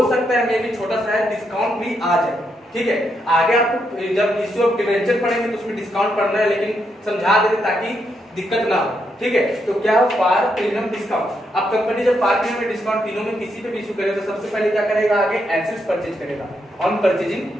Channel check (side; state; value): both; normal; correlation 0.80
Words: सकता है मे भी छोटा सा डिस्काउंट भी आ जाए, ठीक है। आगे आपको जब इशू ऑफ डिवेंचर पढ़ेंगे तो उसमें डिस्काउंट पढ़ना है, लेकिन समझा देते ताकि दिक्कत ना हो, ठीक है। तो क्या हो? Par premium discount. अब कंपनी जब पार प्रीमियम डिस्काउंट तीनों में किसी पे भी इशू करेगा तो सबसे पहले क्या करेगा? आगे एसेट्स परचेज करेगा ऑन परचेजिंग